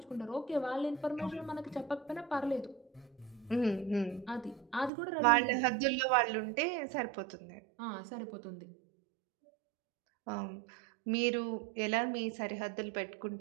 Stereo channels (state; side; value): drops out; left; at 4.9 s